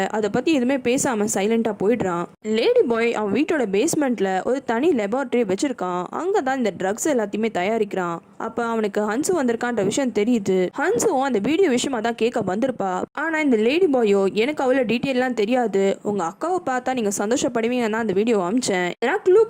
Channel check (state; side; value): identical; both; correlation 1.00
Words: அதை பத்தி எதுவுமே பேசாம சைலண்டா போயிடுறான். லேடி பாய் அவன் வீட்டோட பேஸ்மெண்ட்ல ஒரு தனி லெபார்டரி வச்சிருக்கான். அங்கதான் இந்த ட்ரக்ஸ் எல்லாத்தையுமே தயாரிக்கிறான். அப்ப அவனுக்கு ஹன்சு வந்திருக்கான்ற விஷயம் தெரியுது. ஹன்சுவும் அந்த வீடியோ விஷயமா தான் கேட்க வந்திருப்பா. ஆனா இந்த லேடி பாயோ எனக்கு அவ்வளோ டீட்டெயிலாம் தெரியாது, உங்க அக்காவை பார்த்தா நீங்க சந்தோஷப்படுவீங்கன்னா அந்த வீடியோ அமிச்சேன், ஏன்னா க்ளூ